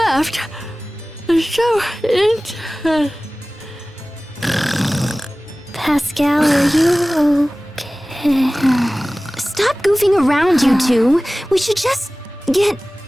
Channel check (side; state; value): both; normal; correlation 0.98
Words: So Pascal, are you okay? Stop goofing around, you two. We should just get